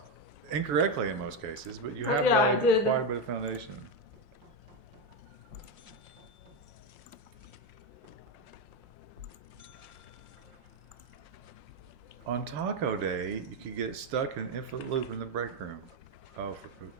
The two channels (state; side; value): late; left; 5.7 ms